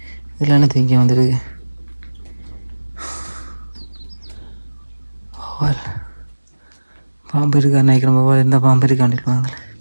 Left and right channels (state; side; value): inverted; both; correlation -1.00